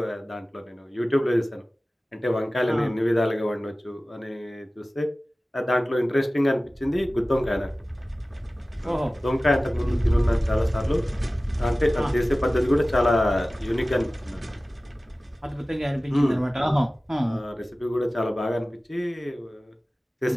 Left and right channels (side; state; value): both; normal; correlation 0.97